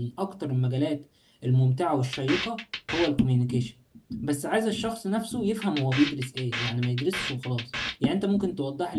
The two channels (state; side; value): identical; both; correlation 1.00